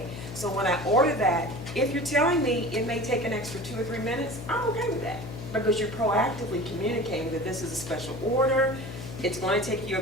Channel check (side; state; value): left; noise; hum, 10 dB below the sound